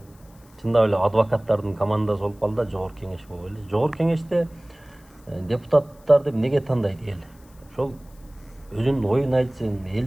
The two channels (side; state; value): left; noise; hiss, 29 dB below the sound